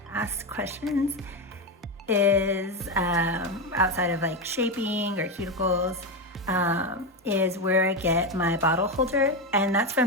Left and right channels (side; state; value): both; normal; correlation 0.12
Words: questions is, outside of like shaping or cuticles, is where I get my bottle holder, and that's